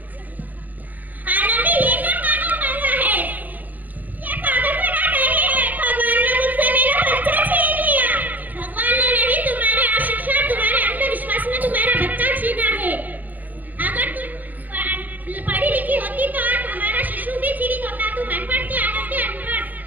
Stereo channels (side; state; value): left; late; 0.082 ms